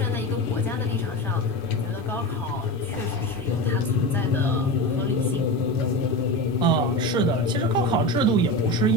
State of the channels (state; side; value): normal; both; correlation 0.23